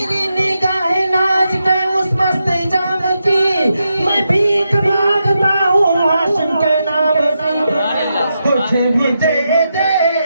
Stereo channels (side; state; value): both; inverted; correlation -0.86